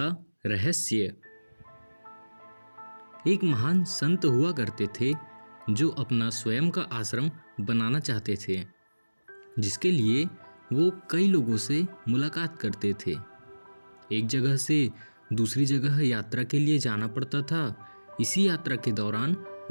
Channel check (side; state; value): both; inverted; correlation -1.00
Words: रहस्य। एक महान संत हुआ करते थे जो अपना स्वयं का आश्रम बनाना चाहते थे, जिसके लिए वो कई लोगों से मुलाकात करते थे। एक जगह से दूसरी जगह यात्रा के लिए जाना पड़ता था। इसी यात्रा के दौरान